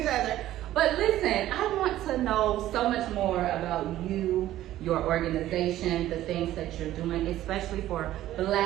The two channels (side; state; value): left; quieter; 13.9 dB